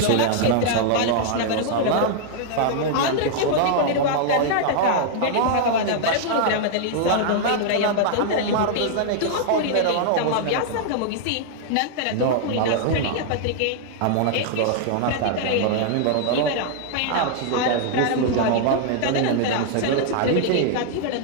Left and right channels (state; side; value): different; both; correlation -0.01